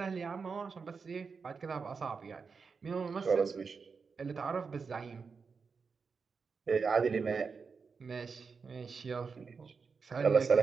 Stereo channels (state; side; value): quieter; left; 5.2 dB